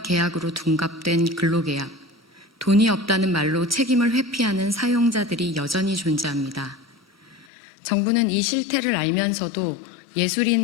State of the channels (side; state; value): right; drops out; at 7.5 s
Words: 계약으로 둔갑된 근로계약, 돈이 없다는 말로 책임을 회피하는 사용자들이 여전히 존재합니다. 정부는 이 실태를 알면서도